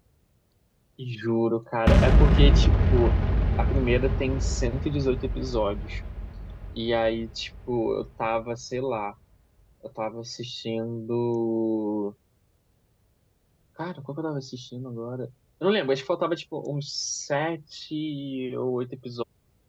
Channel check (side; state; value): both; identical; correlation 1.00